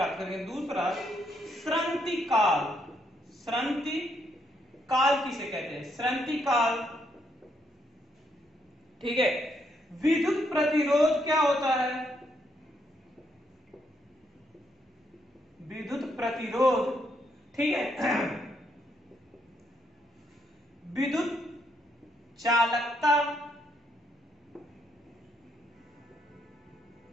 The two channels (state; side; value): normal; both; correlation 0.75